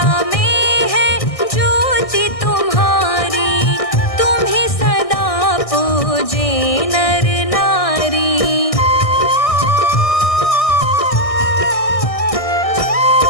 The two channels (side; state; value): right; late; 1.6 ms